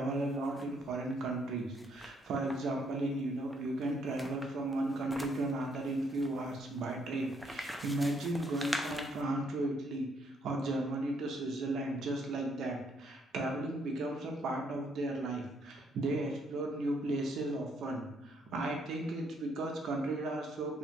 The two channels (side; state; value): both; normal; correlation 0.70